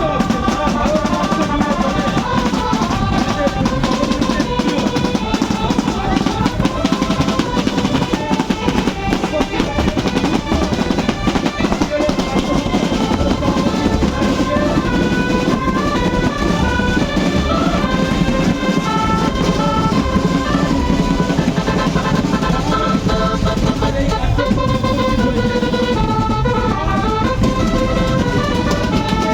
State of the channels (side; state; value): both; identical; correlation 1.00